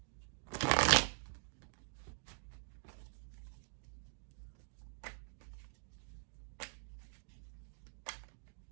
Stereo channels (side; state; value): left; silent; digital silence